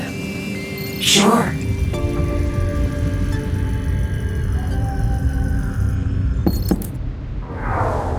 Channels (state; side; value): identical; both; correlation 1.00